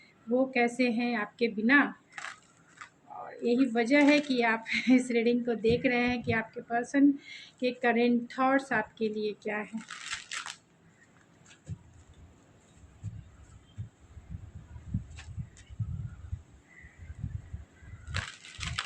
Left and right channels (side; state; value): both; identical; correlation 1.00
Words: वो कैसे हैं आपके बिना, और यही वजह है कि आप इस रीडिंग को देख रहे हैं कि आपके पर्सन के करेंट थॉट्स आपके लिए क्या है।